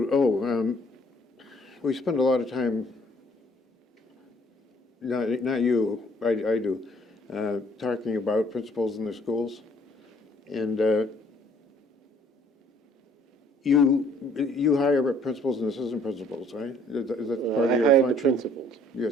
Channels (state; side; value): normal; both; correlation 0.60